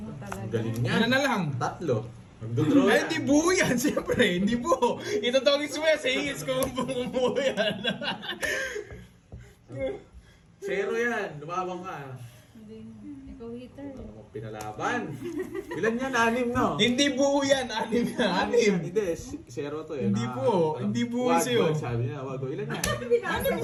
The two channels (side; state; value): both; identical; correlation 1.00